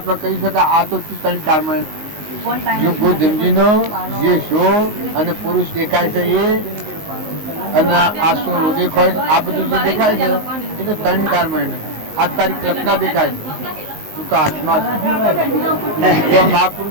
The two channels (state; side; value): late; left; 19 ms